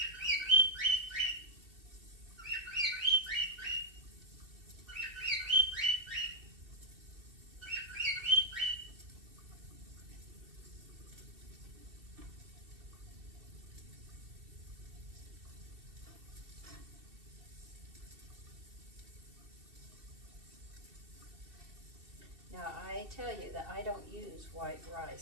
Now I tell you that I don't use white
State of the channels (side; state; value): left; late; 2.7 ms